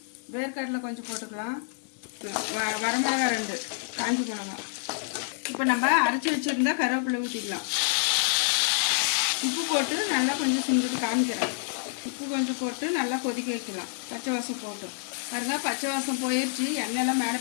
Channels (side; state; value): right; silent; digital silence